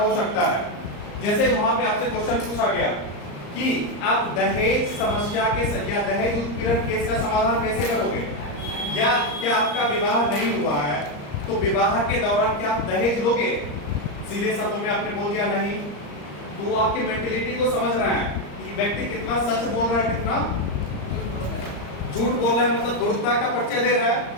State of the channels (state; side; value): late; right; 34 ms